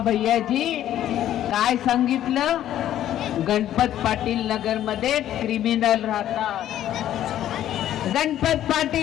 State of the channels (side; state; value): right; quieter; 11.9 dB